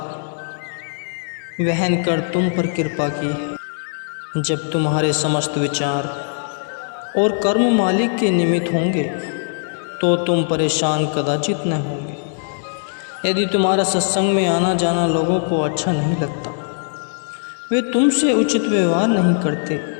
वहन कर तुम पर कृपा की है। जब तुम्हारे समस्त विचार और कर्म मालिक के निमित्त होंगे तो तुम परेशान कदाचित न होंगे। यदि तुम्हारा सत्संग में आना जाना लोगों को अच्छा नहीं लगता, वे तुमसे उचित व्यवहार नहीं करते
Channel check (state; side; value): silent; right; digital silence